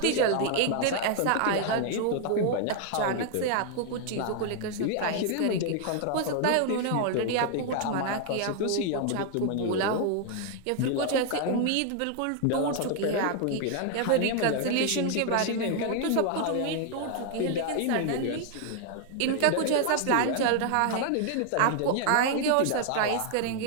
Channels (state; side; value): different; both; correlation 0.00